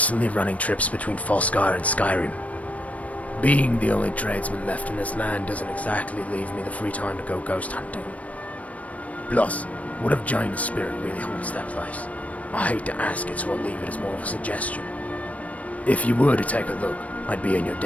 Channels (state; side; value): late; right; 0.068 ms